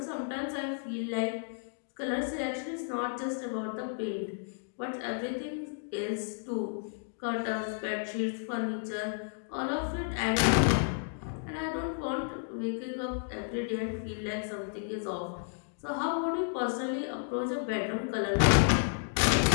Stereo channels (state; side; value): silent; right; digital silence